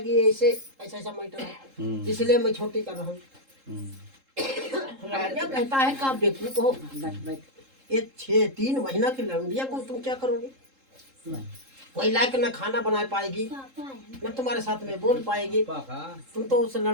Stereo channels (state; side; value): late; left; 3.7 ms